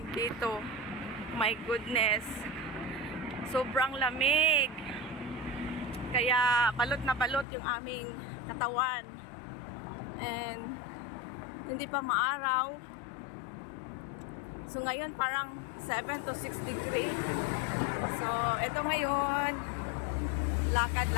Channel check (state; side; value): drops out; right; at 7.5 s